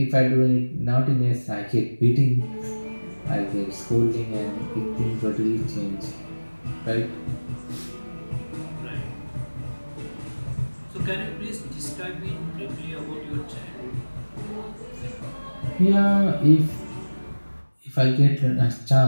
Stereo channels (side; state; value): both; inverted; correlation -1.00